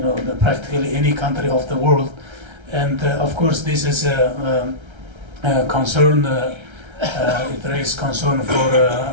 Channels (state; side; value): late; left; 1.3 ms